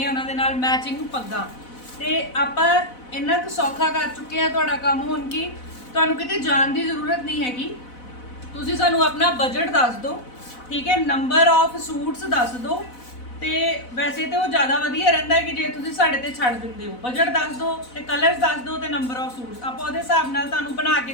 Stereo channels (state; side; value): late; right; 4.0 ms